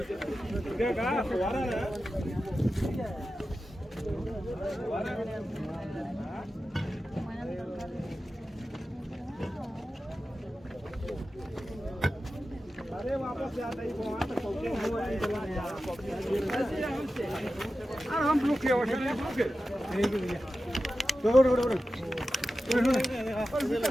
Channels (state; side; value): normal; both; correlation 0.93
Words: अरे वापस जाता ही वहाँ तक पहुँचे हम रुके